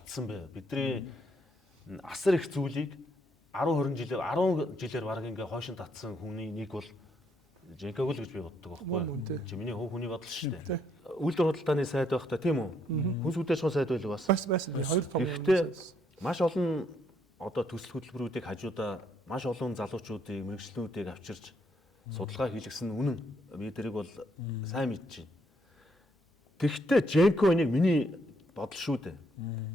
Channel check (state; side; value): normal; both; correlation 0.72